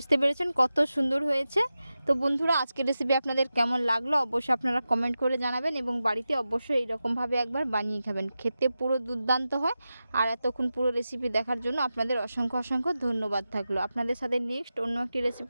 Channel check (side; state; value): both; inverted; correlation -0.92